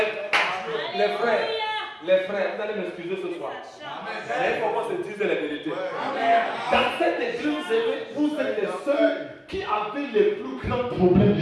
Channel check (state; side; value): identical; both; correlation 1.00